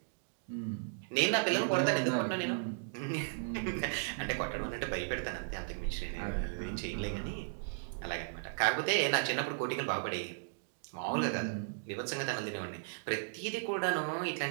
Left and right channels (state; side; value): silent; left; digital silence